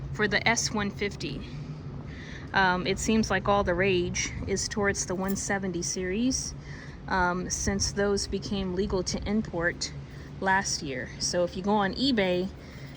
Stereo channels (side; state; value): both; identical; correlation 1.00